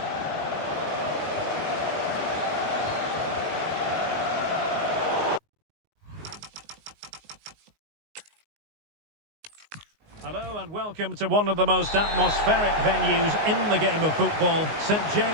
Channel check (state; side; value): late; left; 19 ms